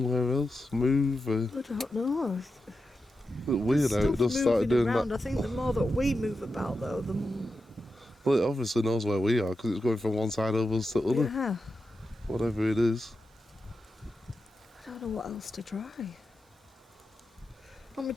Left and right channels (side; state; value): both; normal; correlation 0.89